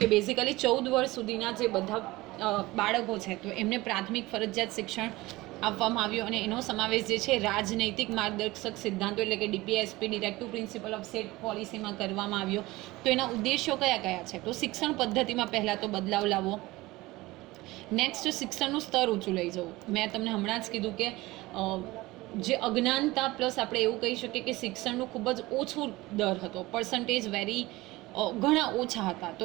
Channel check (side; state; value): left; quieter; 19.9 dB